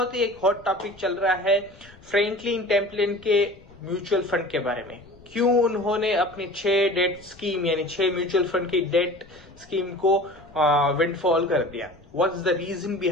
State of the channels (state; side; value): noise; left; rumble, 24 dB below the sound